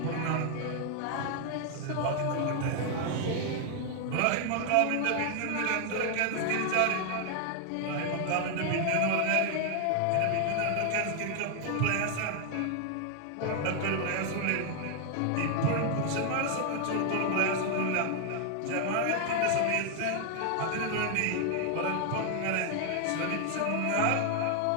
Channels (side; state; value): both; different; correlation 0.00